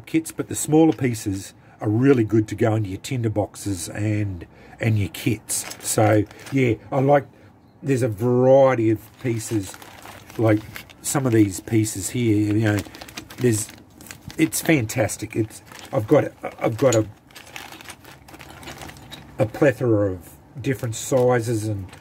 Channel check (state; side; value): identical; both; correlation 1.00